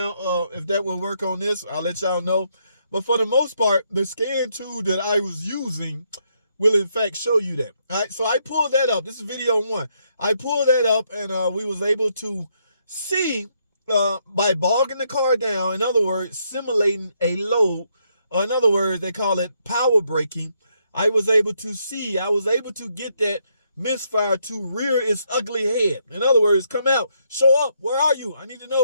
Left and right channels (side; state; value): both; inverted; correlation -0.75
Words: if that will work on this. I'll let y'all know. But for the most part, the scan tool that I was using will in fact show you that. All right, so I pulled that up. This is video 1. I pulled that up, and we was able to see by bogging the car down, in other words, simulating a load. In other words, they call it power braking. I was able to get that misfire to rear its ugly head. In other words, come out, show up. Where are you? I need to